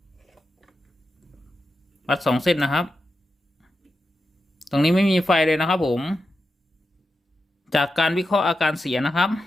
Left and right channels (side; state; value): both; normal; correlation 0.89